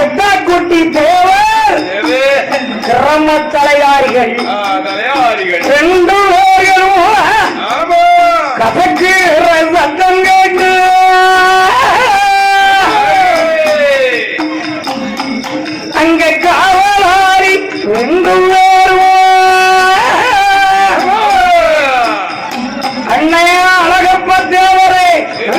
குட்டி தேவர். கிராம தலையாரிகள் 2 பேர்களும் கசக்குற சத்தம் கேட்டு அங்க காவலாரி 2 பேரும் அண்ணையா அழகப்ப தேவரே,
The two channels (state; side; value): identical; both; correlation 1.00